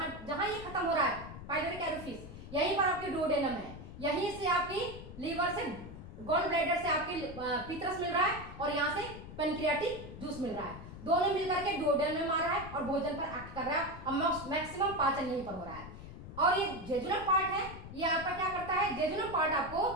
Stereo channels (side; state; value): left; noise; rumble, 13 dB below the sound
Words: जहां ये खत्म हो रहा है पाइलोरिक एरोफिस, यहीं पर आपके डुओडेनम है, यहीं से आपकी लीवर से, गॉल ब्लैडर से आपकी पीत्रस मिल रहा है और यहाँ से पेनक्रियाटिक जूस मिल रहा है। दोनों मिलकर के डुओडेनम में मार रहा है और भोजन पर एक्ट कर रहा है और मैक्सिमम पाचन यहीं पर हो रहा है। और ये जेजुनल पार्ट है, ये आपका क्या करता है, जेजुनल पार्ट आपको